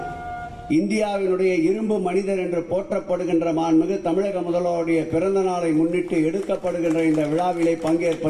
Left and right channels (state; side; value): identical; both; correlation 1.00